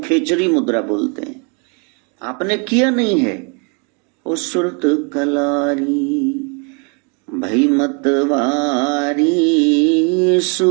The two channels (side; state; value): left; quieter; 35.8 dB